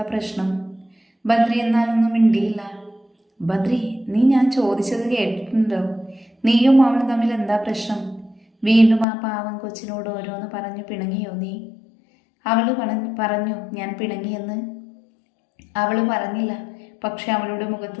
പ്രശ്നം? ബദ്രി എന്നാലൊന്നും മിണ്ടിയില്ല. ബദ്രി, നീ ഞാൻ ചോദിച്ചത് കേട്ടിട്ടുണ്ടോ? നീയും അവളും തമ്മിൽ എന്താ പ്രശ്നം? വീണ്ടും ആ പാവം കൊച്ചിനോട് ഓരോന്ന് പറഞ്ഞു പിണങ്ങിയോ നീ? അവൾ പറഞ്ഞു ഞാൻ പിണങ്ങിയെന്ന്. അവൾ പറഞ്ഞില്ല, പക്ഷെ അവളുടെ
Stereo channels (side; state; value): right; drops out; at 9.1 s